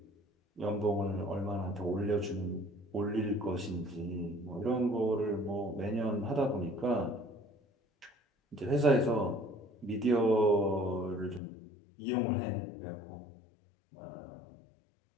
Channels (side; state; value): right; drops out; at 11.4 s